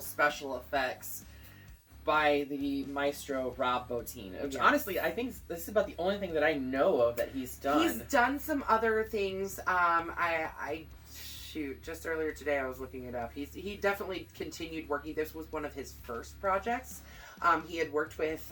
effects by the maestro Rob Bottin. Which honestly, I think this is about the only thing that I know of that he's done. He's done some other things. Just earlier today I was looking it up. He definitely continued working. This was one of his first projects. He had worked with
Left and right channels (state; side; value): identical; both; correlation 1.00